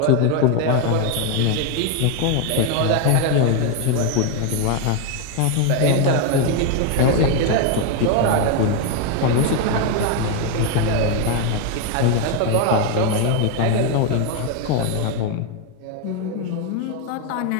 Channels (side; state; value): both; different; correlation 0.01